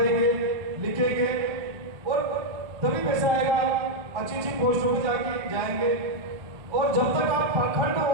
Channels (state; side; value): late; left; 1.2 ms